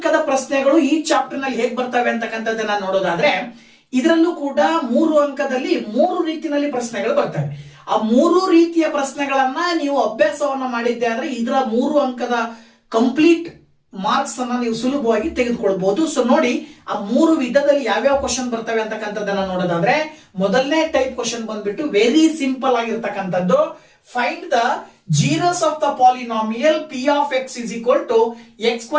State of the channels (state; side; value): identical; both; correlation 1.00